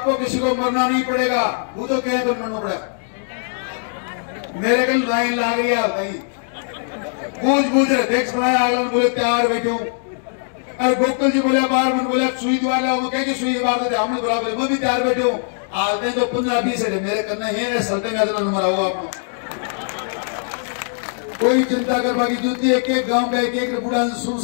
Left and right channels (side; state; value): right; silent; digital silence